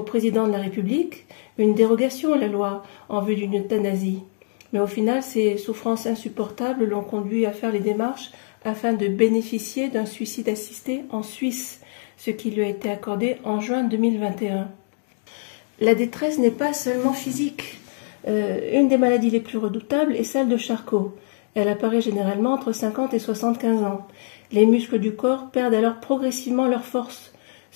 président de la République, une dérogation à la loi en vue d'une euthanasie. Mais au final, ces souffrances insupportables l'ont conduit à faire les démarches afin de bénéficier d'un suicide assisté en Suisse, ce qui lui a été accordé en juin 2021. La détresse n'est pas seulement physique. Une des maladies les plus redoutables est celle de Charcot. Elle apparaît généralement entre 50 et 75 ans. Les muscles du corps perdent alors progressivement leur force,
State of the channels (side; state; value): right; silent; digital silence